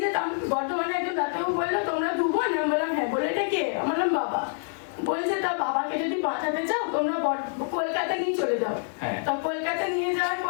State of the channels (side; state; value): right; silent; digital silence